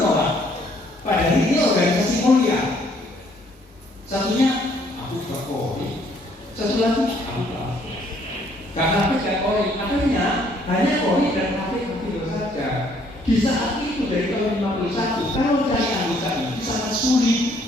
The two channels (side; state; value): both; normal; correlation 0.65